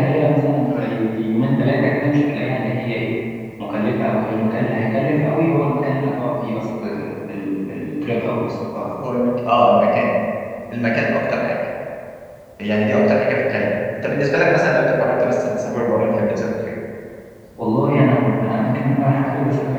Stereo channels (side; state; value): both; identical; correlation 1.00